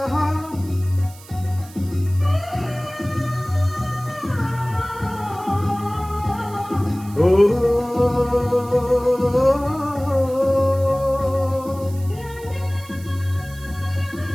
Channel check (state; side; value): noise; right; hiss, 21 dB below the sound